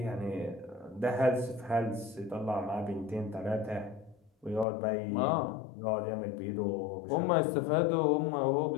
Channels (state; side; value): drops out; right; at 4.7 s